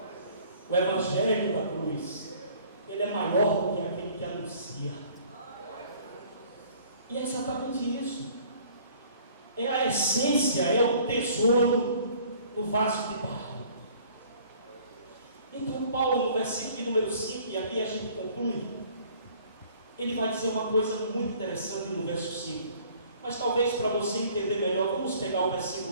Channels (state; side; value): inverted; both; correlation -0.55